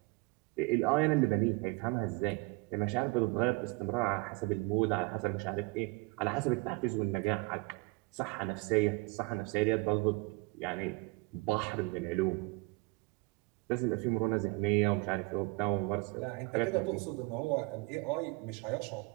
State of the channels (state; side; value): quieter; left; 25.7 dB